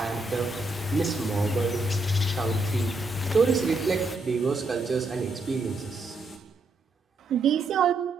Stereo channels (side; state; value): left; quieter; 3.0 dB